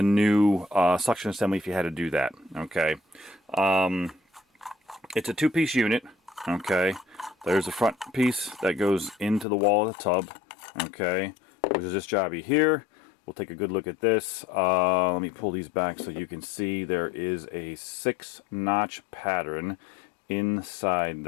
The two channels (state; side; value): drops out; right; at 9.5 s